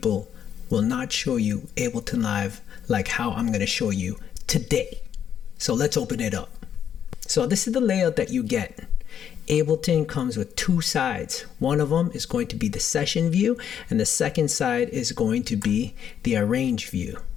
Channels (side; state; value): right; quieter; 8.9 dB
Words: will not show you Ableton Live like how I'm going to show you today. So let's open it up. So this is the layout that you get. Ableton comes with two sides. One of them is going to be the session view, and the second side is going to be the arrange view.